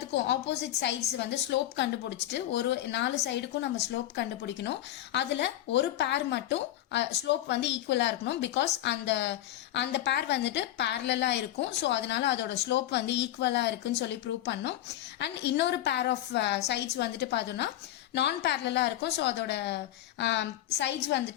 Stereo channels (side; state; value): right; quieter; 13.4 dB